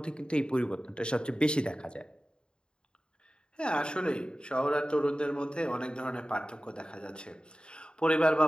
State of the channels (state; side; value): late; right; 0.050 ms